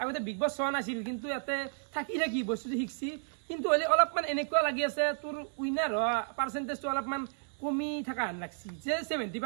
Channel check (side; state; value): left; silent; digital silence